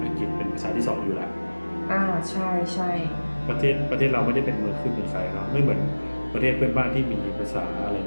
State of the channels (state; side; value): inverted; both; correlation -1.00